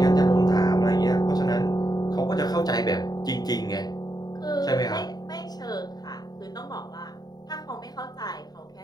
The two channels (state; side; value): late; right; 0.19 ms